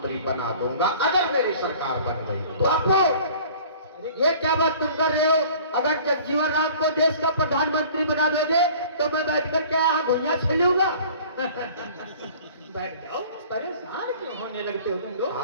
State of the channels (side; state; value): both; inverted; correlation -0.48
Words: बना दूंगा अगर मेरी सरकार बन गई तो। बापू ये क्या बात तुम कर रहे हो? अगर जगजीवन राम को देश का प्रधानमंत्री बना दोगे तो मैं बैठकर क्या यहाँ घुइयां खेलूंगा? बैठ जाओ, परेशान क्यों होने लगते हो तुम लोग?